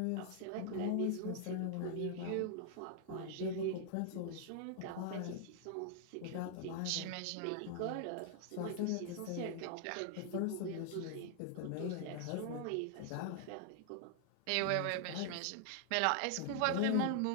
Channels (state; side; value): different; both; correlation 0.00